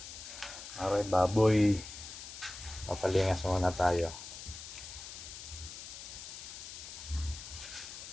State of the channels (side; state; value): left; noise; hiss, 11 dB below the sound